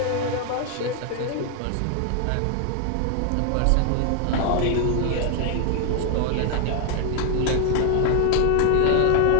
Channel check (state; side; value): different; both; correlation 0.00